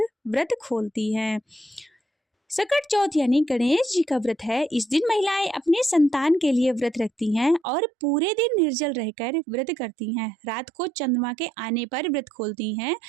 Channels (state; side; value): drops out; left; at 7.6 s